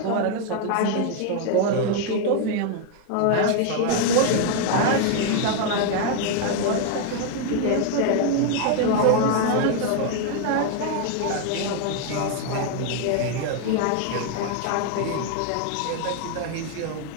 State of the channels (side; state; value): both; different; correlation 0.01